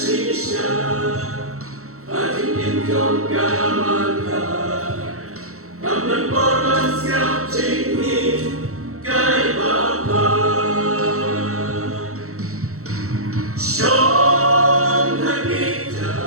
hati ingkong kamata, kamlan poros ngap chinghi, kai bapa. Shong hakita,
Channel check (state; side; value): late; left; 0.64 ms